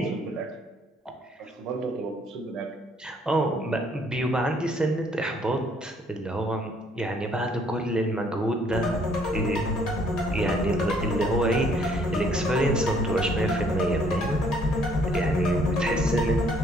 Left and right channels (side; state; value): both; normal; correlation 0.64